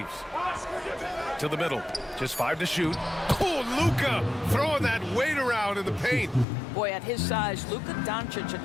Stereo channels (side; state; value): right; drops out; at 6.5 s